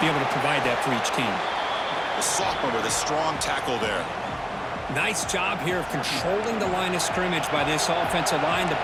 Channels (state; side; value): identical; both; correlation 1.00